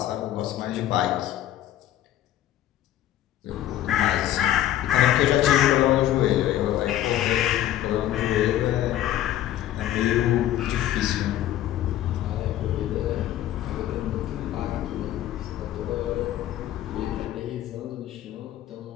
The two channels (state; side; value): quieter; right; 12.7 dB